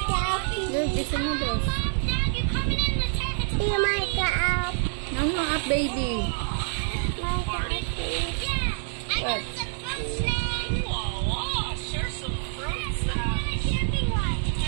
Look, it's a noodles. No, no, up, baby. What?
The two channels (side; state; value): left; silent; 56 dB below the other